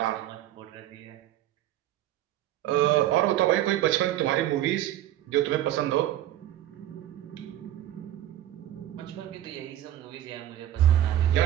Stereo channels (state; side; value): quieter; left; 12.7 dB